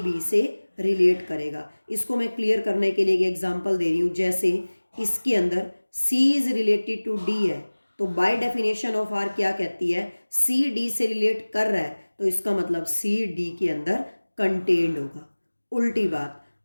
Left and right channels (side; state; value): both; inverted; correlation -1.00